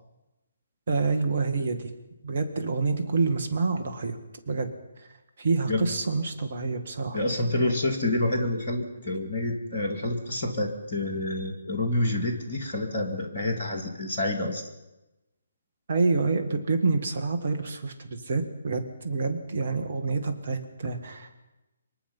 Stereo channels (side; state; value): both; inverted; correlation -0.75